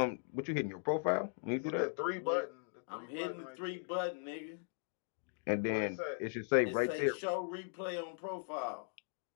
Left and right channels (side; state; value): right; silent; digital silence